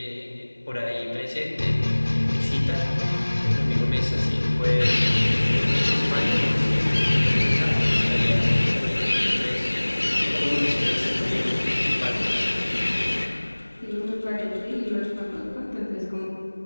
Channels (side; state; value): both; inverted; correlation -1.00